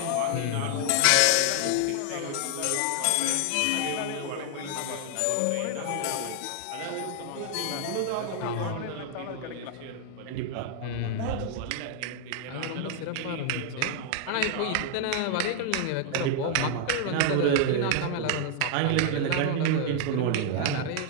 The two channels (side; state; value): both; different; correlation 0.00